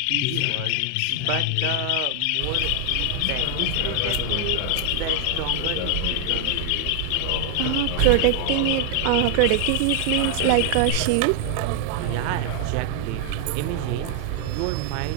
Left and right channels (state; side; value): different; both; correlation 0.00